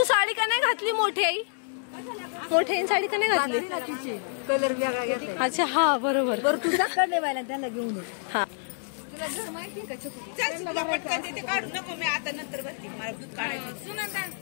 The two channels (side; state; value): right; silent; digital silence